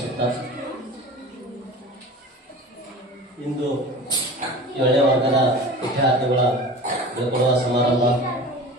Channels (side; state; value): both; normal; correlation 0.36